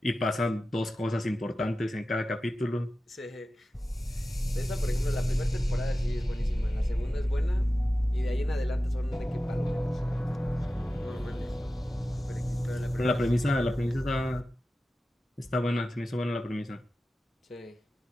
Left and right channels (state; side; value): normal; both; correlation 0.94